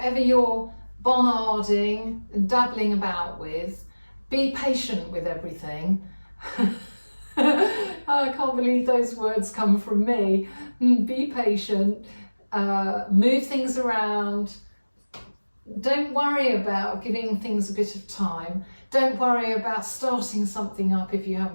you're Bonnarding and dabbling about with, be patient with everything. I can't believe those words come from me. Be patient, move things around. Don't worry about giving things a bit of time. Don't worry about starting something up if you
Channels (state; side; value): inverted; both; correlation -1.00